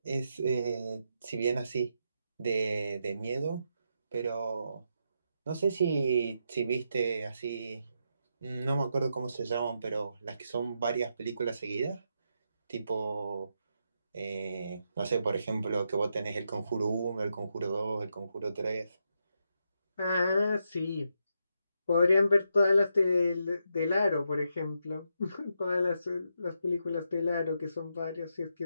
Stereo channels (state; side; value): inverted; both; correlation -0.82